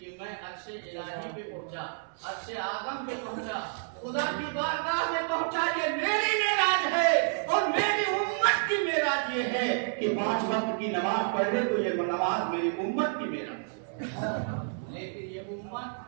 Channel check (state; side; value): silent; left; digital silence